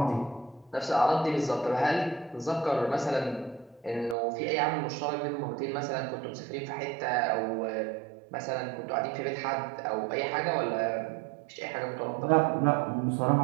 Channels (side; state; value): left; drops out; at 4.2 s